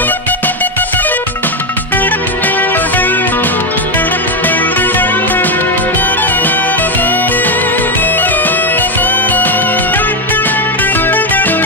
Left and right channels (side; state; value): both; normal; correlation 0.08